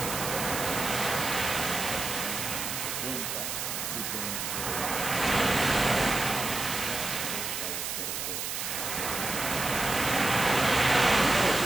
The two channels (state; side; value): noise; right; hiss, 3 dB below the sound